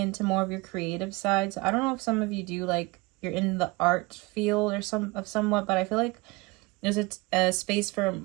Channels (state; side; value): quieter; left; 24.3 dB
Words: more of your creative side. So I don't know if some of you do, like you're in the art field or somewhat, but I feel like there's a space for